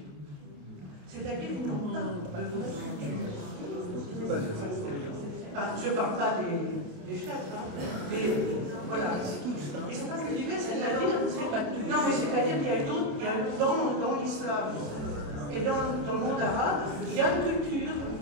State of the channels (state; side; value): late; left; 27 ms